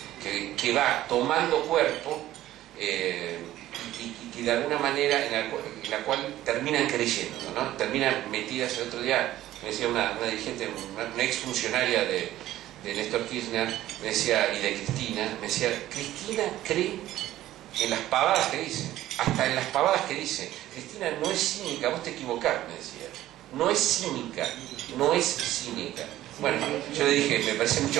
que va tomando cuerpo y que de alguna manera en la cual terminan creyendo, ¿no? Terminan metidas. El otro día me decía una dirigente, una exfuncionaria de Néstor Kirchner, me decía, y de Cristina, me decía, Cristina cree en las pavadas que dice, hasta en las pavadas que dice. Cristina no es cínica, vos te equivocás, me decía. No es cínica, no es cínica. Bueno, yo le dije, me parece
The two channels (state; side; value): quieter; left; 14.3 dB